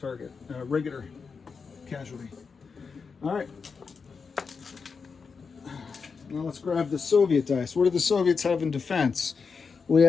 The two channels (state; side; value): quieter; right; 5.3 dB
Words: regular casualty. All right. Now let's grab the Soviet dice. What do the Soviets have in defense? We